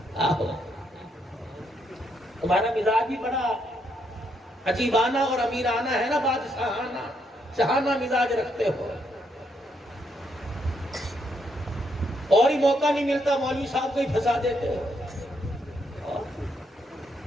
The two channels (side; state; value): both; normal; correlation 0.76